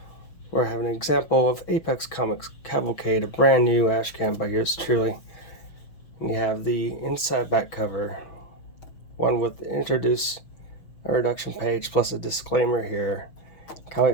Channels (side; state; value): right; late; 6.2 ms